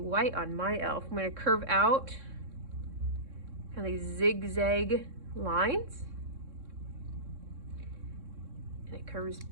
on my elf. I'm gonna curve out kind of these zigzag lines. And it curves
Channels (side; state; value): left; late; 3.6 ms